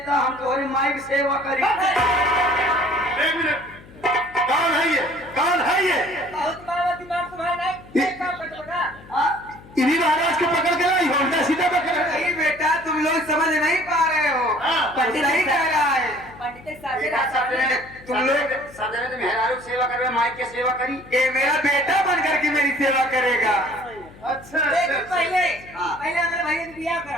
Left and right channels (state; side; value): noise; left; hum, 21 dB below the sound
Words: हम तुम्हारी माई की सेवा करी। एक मिनट, कौन है ये? कौन है ये? इन्हीं महाराज को पकड़ के लाई हो, उल्टा सीधा पकड़ के। नहीं बेटा तुम लोग समझ नहीं पा रहे हो, पंडित सही कह रहा है। तुम लोग सदन में मेहरारू सेवा कर माई की सेवा करी। ये मेरा बेटा बन करके मेरी सेवा करेगा। अच्छा अच्छा पहले हमारे भैया से बियाह